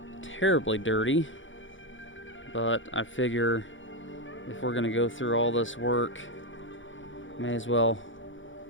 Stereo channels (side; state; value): right; late; 0.56 ms